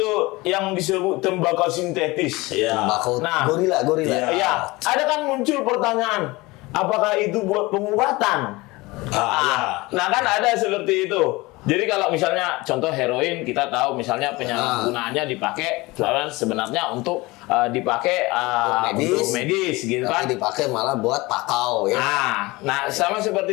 yang disebut tembakau sintetis. Nah, gorila. Ada kan muncul pertanyaan, apakah itu buat pengobatan? Nah kan ada seperti itu. Jadi kalau misalnya contoh heroin, kita tahu misalnya penyalahgunaannya dipakai sebenarnya untuk dipakai untuk medis gitu kan. Tapi dipakai malah buat pakau ya. Nah, sama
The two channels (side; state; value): right; quieter; 22.1 dB